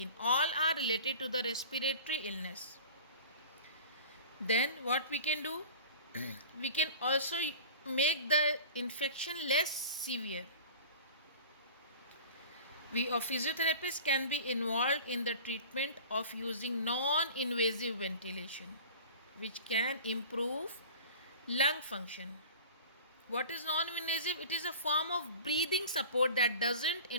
All are related to the respiratory illness. Then what we can do? We can also make the infection less severe. We physiotherapists can be involved in the treatment of using non-invasive ventilation, which can improve lung function. What is non-invasive? It is a form of breathing support that doesn't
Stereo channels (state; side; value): inverted; both; correlation -0.39